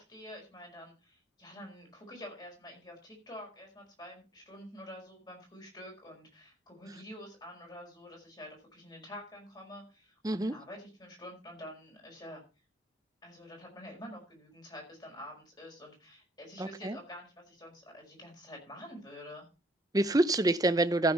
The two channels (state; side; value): normal; both; correlation 0.64